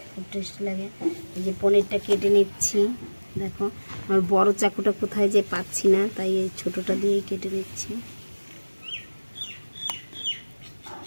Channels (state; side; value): inverted; both; correlation -1.00